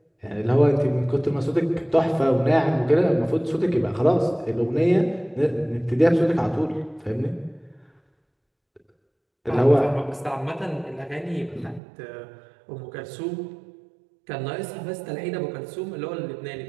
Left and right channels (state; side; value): drops out; left; at 11.8 s